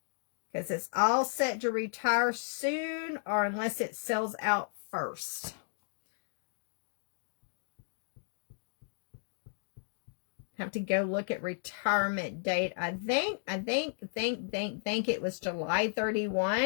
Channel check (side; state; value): right; silent; digital silence